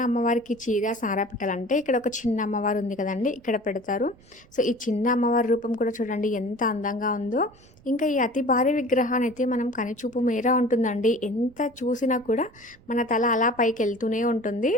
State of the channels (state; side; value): noise; right; rumble, 27 dB below the sound